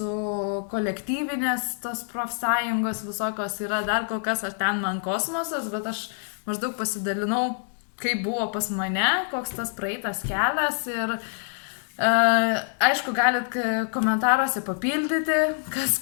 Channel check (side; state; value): right; silent; digital silence